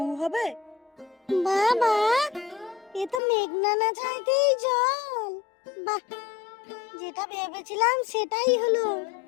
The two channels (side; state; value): right; drops out; at 3.2 s